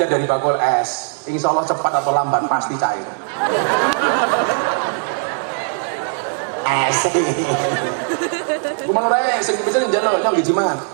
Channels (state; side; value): silent; left; 58 dB below the other